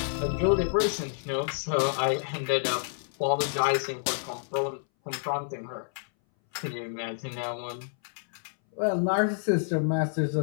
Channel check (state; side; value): silent; right; 59 dB below the other